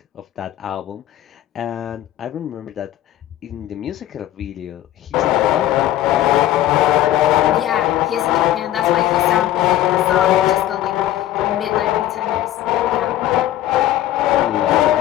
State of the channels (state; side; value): quieter; right; 13.5 dB